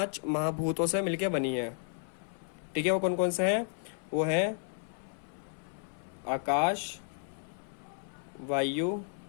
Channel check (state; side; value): silent; right; 56 dB below the other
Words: महाभूतों से मिलकर बनी है। ठीक है, वो कौन कौन से हैं, वो है आकाश, वायु,